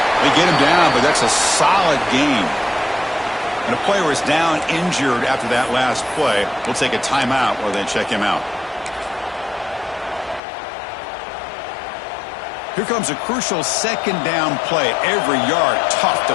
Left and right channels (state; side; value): drops out; right; at 10.4 s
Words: They get him down, but that's a solid gain. And a player is down injured after that last play. We'll take a timeout or then check him out. Here comes a crucial second down play. Every yard tough to